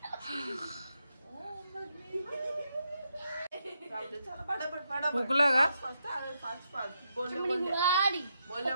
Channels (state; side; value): inverted; both; correlation -0.81